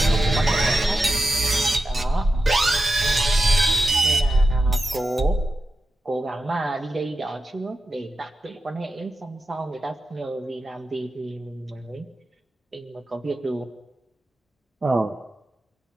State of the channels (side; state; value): both; normal; correlation 0.91